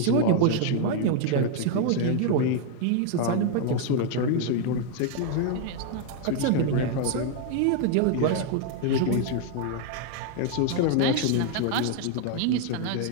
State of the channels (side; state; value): both; different; correlation 0.00